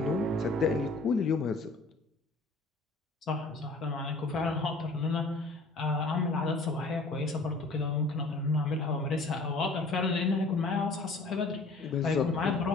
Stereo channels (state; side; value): quieter; right; 3.3 dB